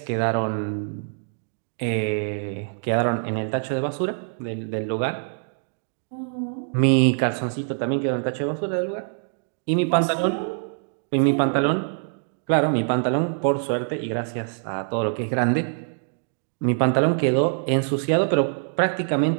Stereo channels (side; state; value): left; silent; digital silence